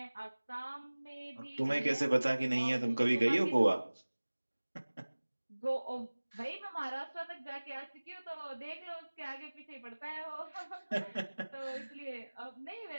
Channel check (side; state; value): both; inverted; correlation -1.00